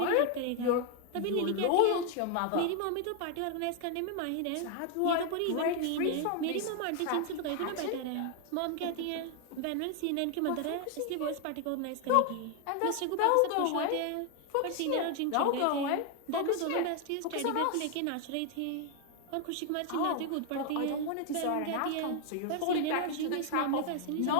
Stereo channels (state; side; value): different; both; correlation 0.00